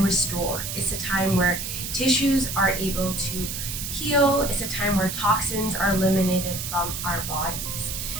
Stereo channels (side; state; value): right; noise; hiss, 5 dB below the sound